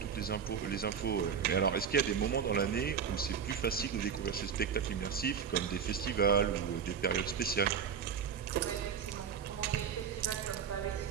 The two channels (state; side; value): quieter; left; 7.1 dB